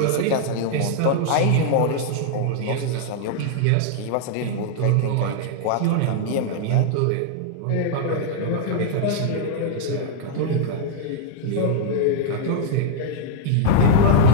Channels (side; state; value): both; different; correlation -0.01